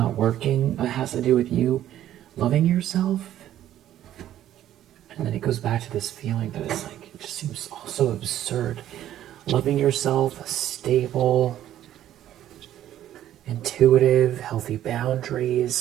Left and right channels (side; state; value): left; quieter; 12.1 dB